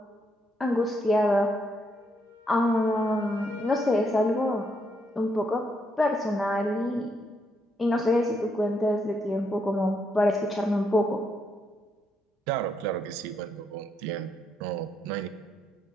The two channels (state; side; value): normal; both; correlation 0.77